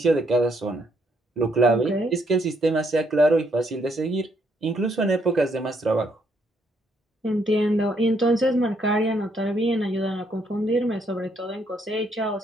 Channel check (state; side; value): normal; both; correlation 0.72